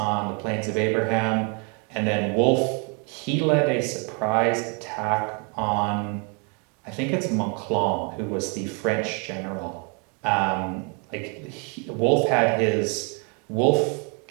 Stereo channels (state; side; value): quieter; left; 35.3 dB